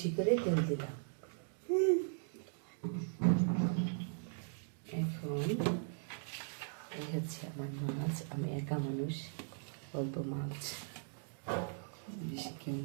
করে তেল দিলাম। এখন এই হচ্ছে আমার মাছ, আমি একা মানুষ, অল্প মাছ, বেশি কেউ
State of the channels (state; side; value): silent; left; digital silence